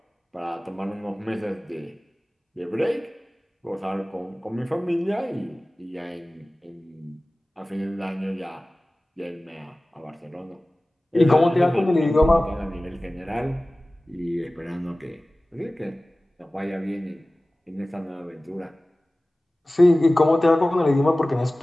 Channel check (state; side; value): normal; both; correlation 0.97